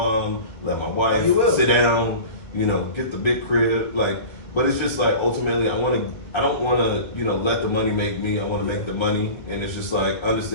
let my wife sit down, you know, get the big crib, like. But it's just like ultimately, I don't want to, you know, let the money make me. I want to make the money, and it's just like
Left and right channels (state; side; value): late; right; 1.6 ms